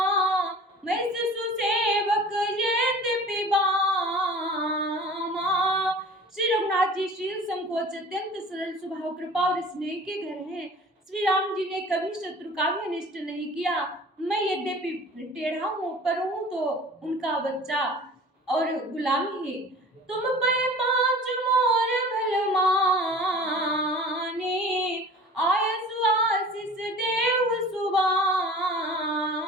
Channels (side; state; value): both; normal; correlation 0.43